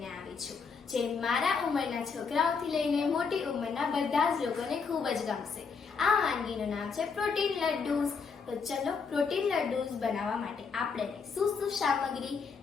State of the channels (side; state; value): right; quieter; 5.4 dB